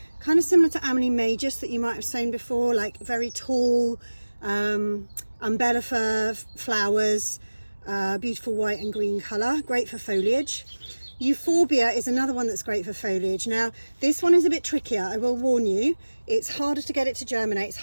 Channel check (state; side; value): inverted; both; correlation -1.00